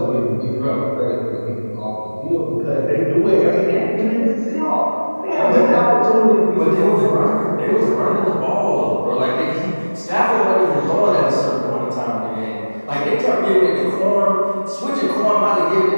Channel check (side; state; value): both; inverted; correlation -1.00